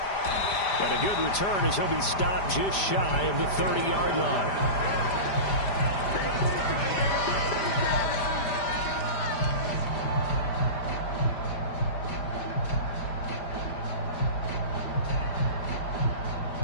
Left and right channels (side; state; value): right; late; 5.0 ms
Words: And a good return as he'll be stopped just shy of the 30-yard line.